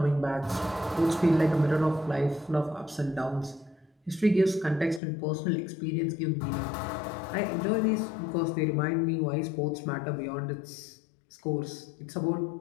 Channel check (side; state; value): right; drops out; at 5.0 s